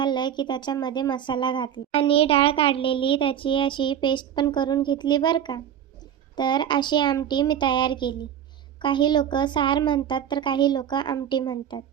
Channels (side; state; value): left; quieter; 9.5 dB